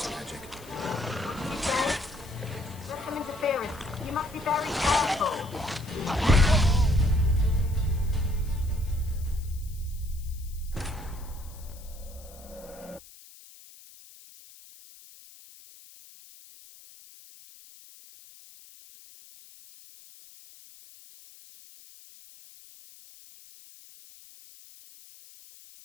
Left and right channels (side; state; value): left; noise; hiss, 20 dB below the sound